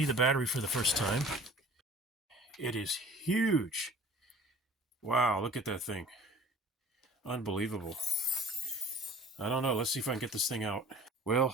the battery for the first time. It is huge. Wow, look at that thing. Unbelievable. I don't know, let's see if I can get this thing out.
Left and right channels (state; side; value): normal; both; correlation 0.46